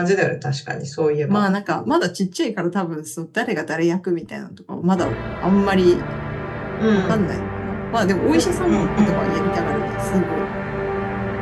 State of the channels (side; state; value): both; identical; correlation 1.00